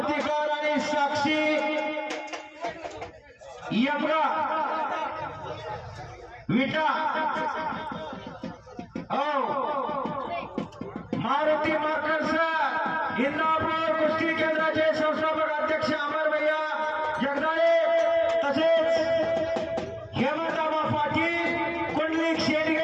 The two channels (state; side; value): identical; both; correlation 1.00